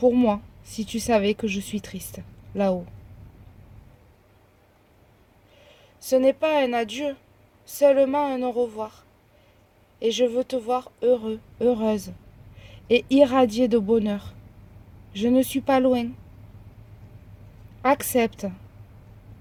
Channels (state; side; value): identical; both; correlation 1.00